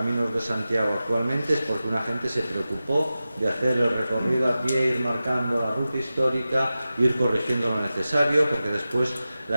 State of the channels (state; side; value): inverted; both; correlation -0.94